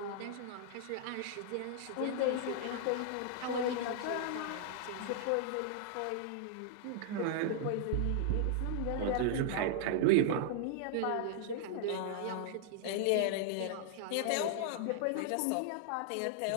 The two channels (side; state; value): both; different; correlation -0.01